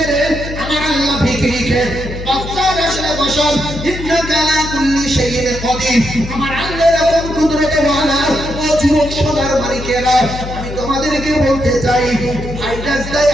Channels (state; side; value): noise; left; hum, 9 dB below the sound